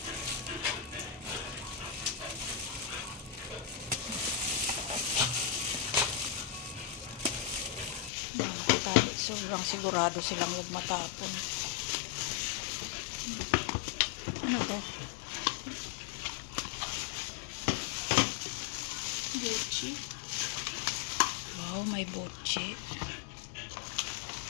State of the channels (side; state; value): right; drops out; at 8.1 s